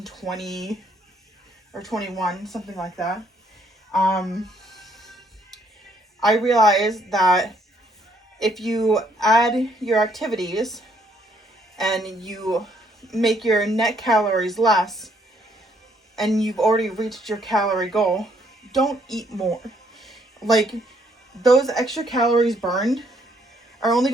or 21, something like that. I realized that if you add your activities and you make your net calories less and you've already reached your calorie goal, don't eat more. Like, those extra calories burned are only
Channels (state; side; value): normal; both; correlation 0.68